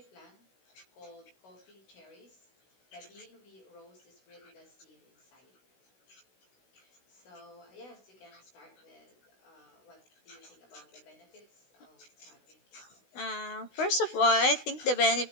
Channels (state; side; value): late; right; 16 ms